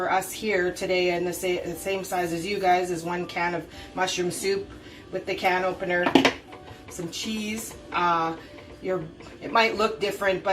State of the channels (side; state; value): both; identical; correlation 1.00